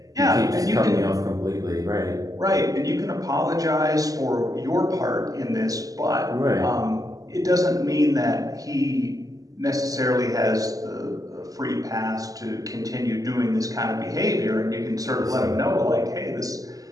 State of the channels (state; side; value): late; left; 0.17 ms